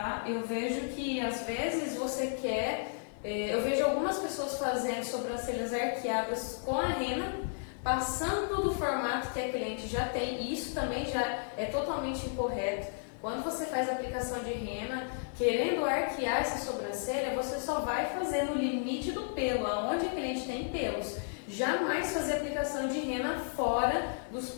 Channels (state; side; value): silent; right; 56 dB below the other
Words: Eu vejo que às vezes você quer, eu vejo algumas pessoas fazendo sobrancelhas arqueadas com a rena, passando do formato que a cliente já tem, e isso também já é totalmente incorreto. Quando você faz a aplicação de rena, querendo arquear essa sobrancelha, você só vai fazer no limite do pelo, aonde a cliente tem pelos. Jamais fazer aplicação de rena fora dos